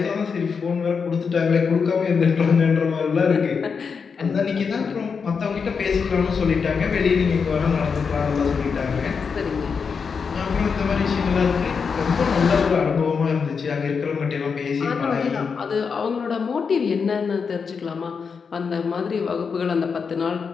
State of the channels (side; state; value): right; quieter; 5.7 dB